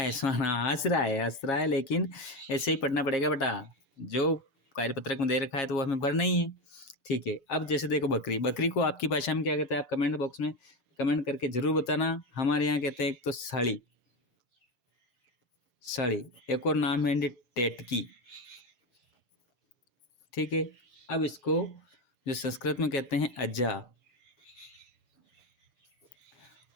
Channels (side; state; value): right; late; 7.4 ms